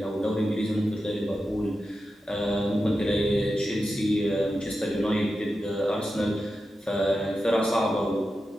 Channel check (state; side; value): normal; both; correlation 0.90